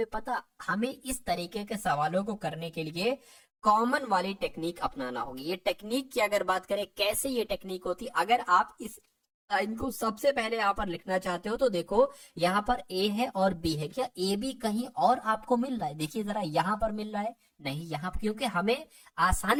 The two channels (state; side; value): identical; both; correlation 1.00